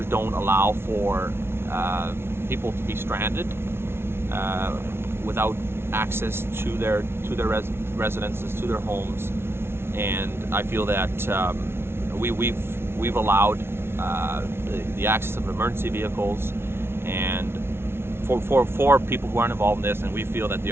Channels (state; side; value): late; left; 0.12 ms